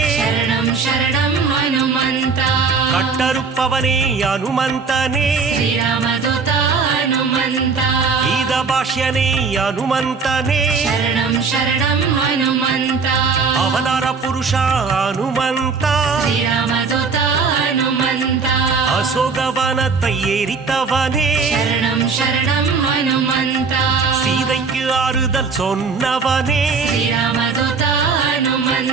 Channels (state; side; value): quieter; left; 5.0 dB